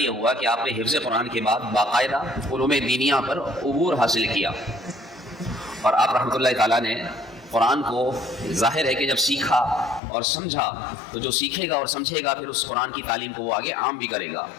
ہوا کہ آپ نے حفظ قرآن کے بعد باقاعدہ علوم دینیہ پر عبور حاصل کیا، اور آپ رحمۃ اللہ تعالیٰ نے قرآن کو ظاہر ہے کہ جب سیکھا اور سمجھا تو جو سیکھے گا اور سمجھے گا پھر اس قرآن کی تعلیم کو وہ آگے عام بھی کرے گا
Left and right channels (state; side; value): drops out; right; at 10.0 s